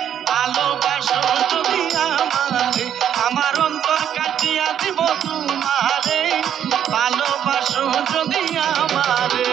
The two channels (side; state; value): left; quieter; 9.6 dB